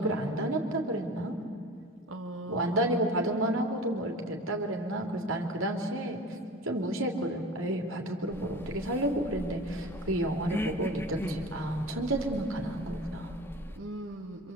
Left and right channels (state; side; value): normal; both; correlation 0.37